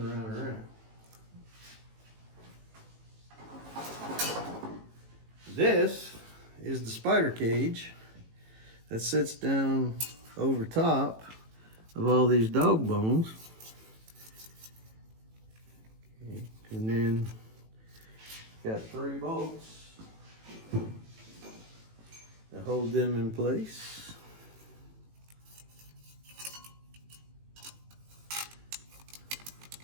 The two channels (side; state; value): left; late; 18 ms